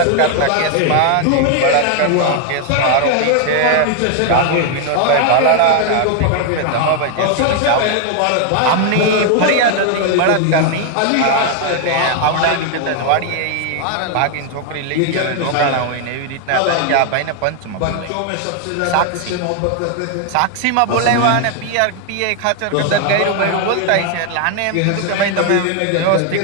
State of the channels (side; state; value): both; different; correlation 0.00